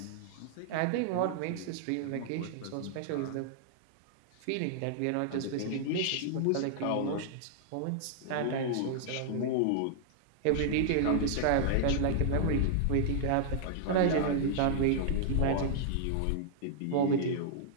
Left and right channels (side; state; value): both; different; correlation -0.01